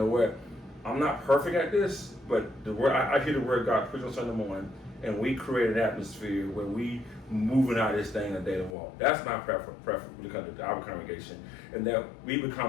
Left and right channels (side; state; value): right; drops out; at 8.8 s